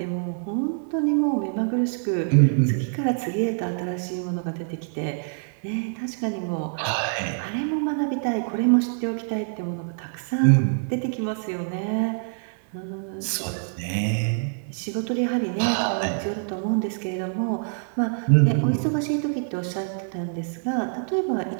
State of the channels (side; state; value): left; silent; 57 dB below the other